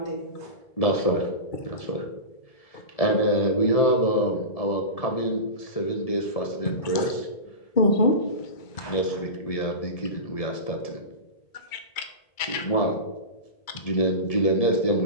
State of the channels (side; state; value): right; late; 2.3 ms